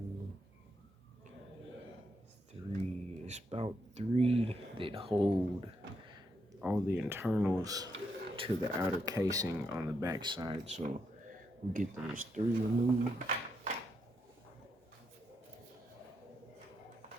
3, it's about 3 that hold all the internals to the outer casing on the back side. So we'll get those 3 removed.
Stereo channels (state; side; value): normal; both; correlation 0.80